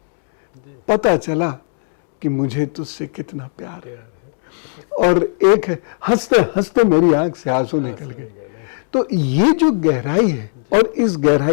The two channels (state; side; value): silent; right; digital silence